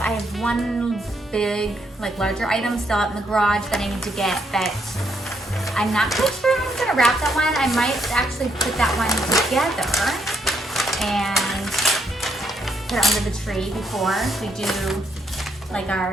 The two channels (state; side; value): normal; both; correlation 0.76